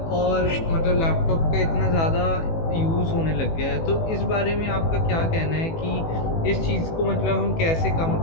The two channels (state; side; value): late; right; 18 ms